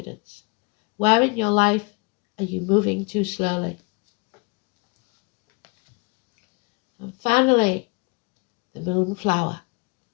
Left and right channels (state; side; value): quieter; right; 29.4 dB